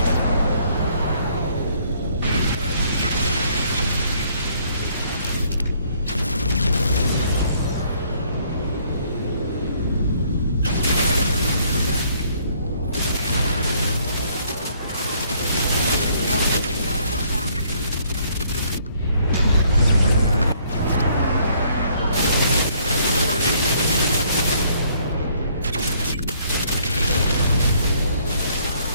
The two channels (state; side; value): inverted; both; correlation -0.65